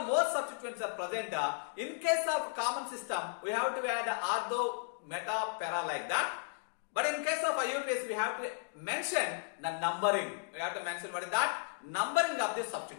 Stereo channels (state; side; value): silent; right; digital silence